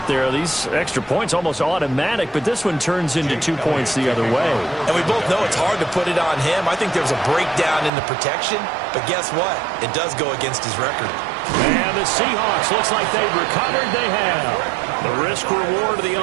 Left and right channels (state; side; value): drops out; left; at 7.9 s